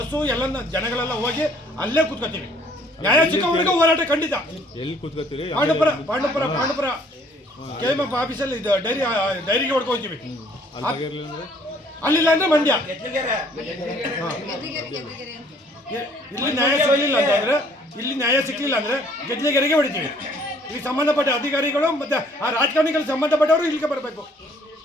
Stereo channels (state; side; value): normal; both; correlation 0.60